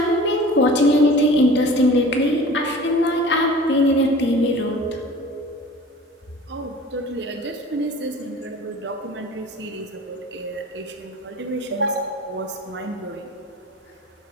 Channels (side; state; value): both; normal; correlation 0.42